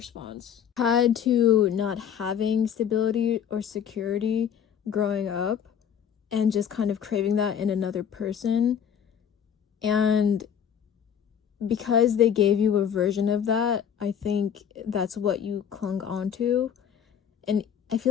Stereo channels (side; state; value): right; quieter; 8.4 dB